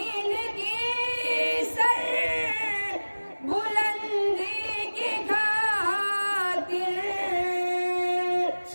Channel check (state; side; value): inverted; both; correlation -1.00